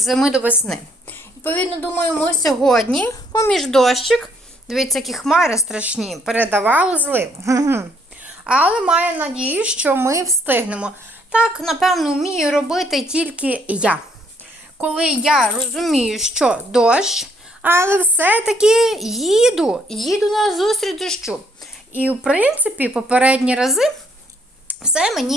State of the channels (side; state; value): both; normal; correlation 0.67